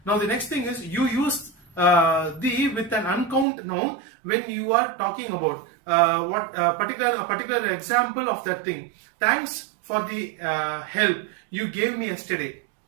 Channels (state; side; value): drops out; left; at 3.5 s